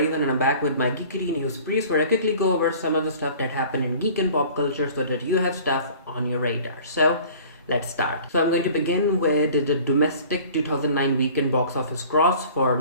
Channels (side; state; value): both; inverted; correlation -0.47